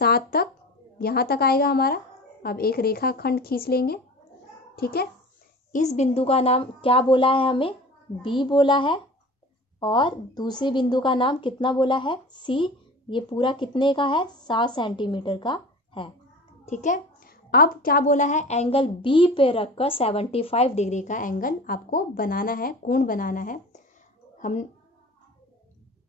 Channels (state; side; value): normal; both; correlation 0.38